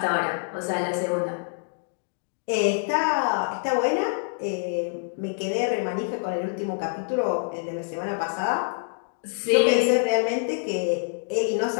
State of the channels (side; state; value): right; silent; digital silence